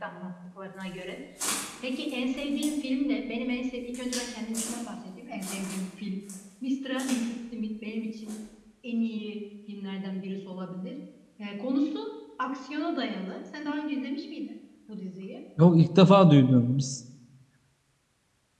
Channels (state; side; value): identical; both; correlation 1.00